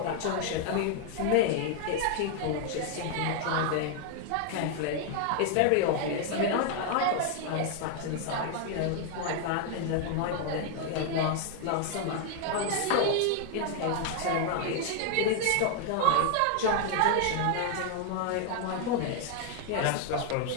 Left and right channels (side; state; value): both; different; correlation 0.00